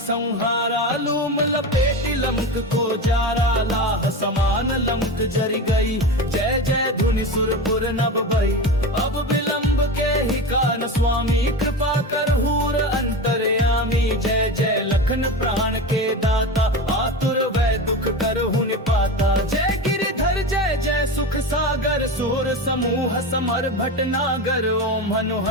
लूम लपेटी लंक को जारा। लाह समान लंक जरी गई, जय जय धुनि सुरपुर नभ भई। अब विलंब के ही कान स्वामी, कृपा कर हूर अंतर्यामी। जय जय लखन प्राण के दाता, आतुर वै दुख करहु निपाता। जय गिरिधर जय जय सुख सागर, सूर समूह समर भटनागर। ओम हनु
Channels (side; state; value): both; normal; correlation 0.24